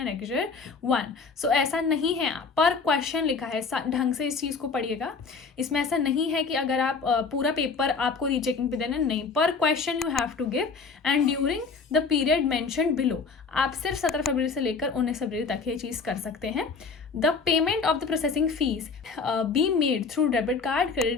1। So ऐसा नहीं है, पर क्वेश्चन लिखा है, ढंग से इस चीज़ को पढ़िएगा। इसमें ऐसा नहीं है कि अगर आप पूरा पेपर आपको रीचेकिंग पे देना, नहीं, per question you have to give and during the period mentioned below. आप सिर्फ 17 फरवरी से लेकर 19 फरवरी तक ये चीज़ कर सकते हैं। The payment of the processing fee be made through debit card,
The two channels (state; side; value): quieter; right; 4.8 dB